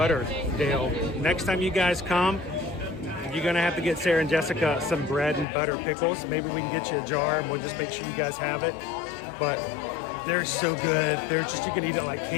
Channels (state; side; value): drops out; right; at 5.5 s